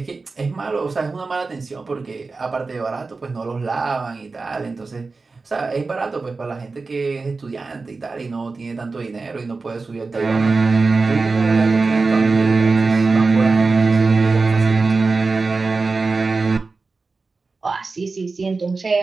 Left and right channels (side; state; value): left; quieter; 4.0 dB